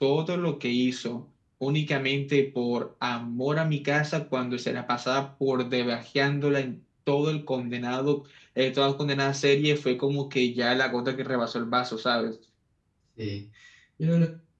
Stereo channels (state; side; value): identical; both; correlation 1.00